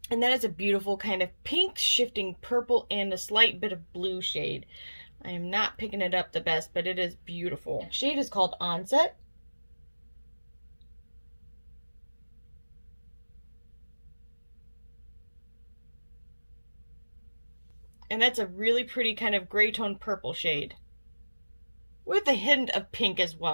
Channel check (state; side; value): inverted; both; correlation -1.00